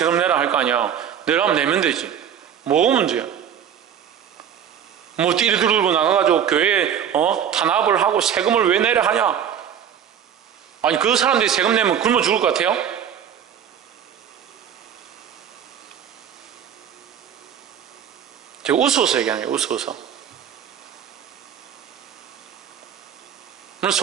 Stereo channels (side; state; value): left; quieter; 8.8 dB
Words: 내라 할 거 아니야. 내라면 내면 되지. 뭐가 문제야? 뭐 띠리 들고 나가가지고 교회에 탄압을 하고 세금을 왜 내라 하냐? 아니 그 사람들이 세금 내면 굶어 죽을 것 같아요? 제가 웃어서 얘기하는 거예요. 웃어서. 물론